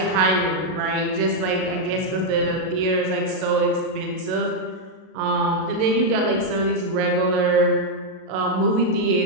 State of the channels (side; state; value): left; late; 37 ms